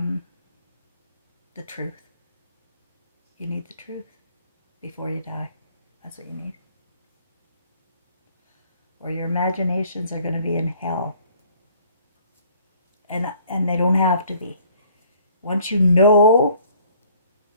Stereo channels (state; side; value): inverted; both; correlation -0.58